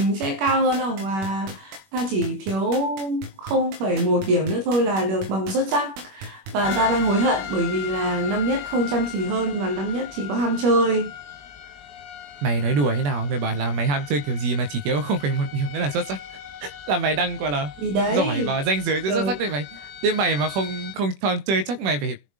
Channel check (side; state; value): left; late; 21 ms